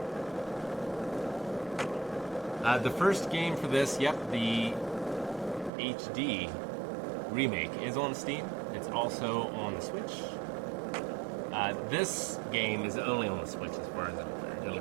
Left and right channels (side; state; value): left; drops out; at 5.7 s